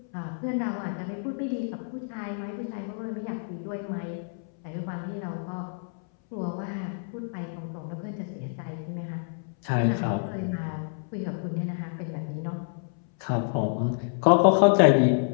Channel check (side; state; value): right; silent; 59 dB below the other